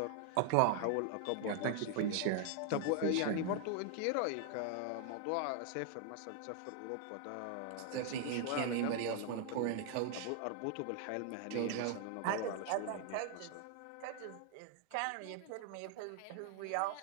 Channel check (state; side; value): different; both; correlation 0.00